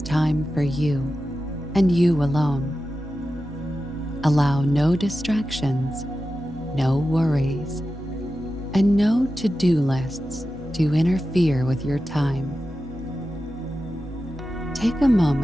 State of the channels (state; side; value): normal; both; correlation 0.92